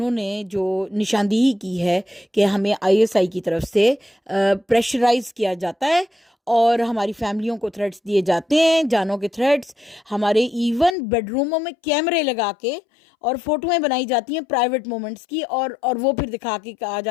نے جو نشاندہی کی ہے کہ ہمیں ISI کی طرف سے پریشرائز کیا جاتا ہے اور ہماری فیملیوں کو تھریٹس دیے جاتے ہیں، جانوں کے تھریٹس، ہمارے ایون بیڈ روموں میں کیمرے لگا کے اور فوٹویں بنائی جاتی ہیں پرائیویٹ مومنٹس کی، اور وہ پھر دکھا کے کہا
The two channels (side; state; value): right; drops out; at 11.0 s